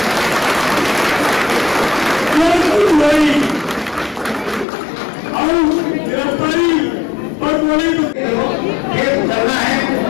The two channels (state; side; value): drops out; right; at 4.7 s